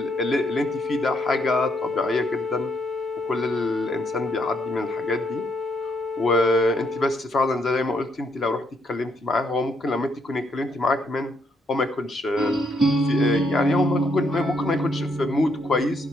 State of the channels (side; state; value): both; normal; correlation 0.74